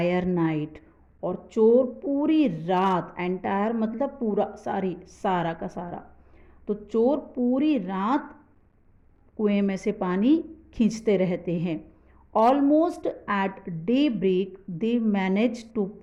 night। और चोर पूरी रात, एंटायर मतलब पूरा, सारा का सारा, तो चोर पूरी रात कुएं में से पानी खींचते रहते हैं। Almost at daybreak they manage to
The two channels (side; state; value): both; identical; correlation 1.00